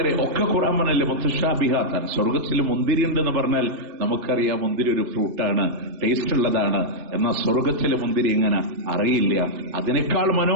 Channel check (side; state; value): left; late; 3.4 ms